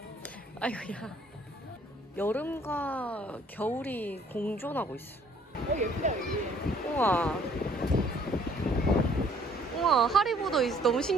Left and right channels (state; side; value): normal; both; correlation 0.60